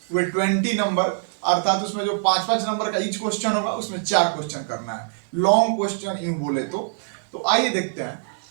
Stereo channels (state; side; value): silent; left; digital silence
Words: वे 20 नंबर, अर्थात उसमें जो 5-5 नंबर का ईच क्वेश्चन होगा उसमें 4 क्वेश्चन करना है, लॉन्ग क्वेश्चन यूं बोले तो आइए देखते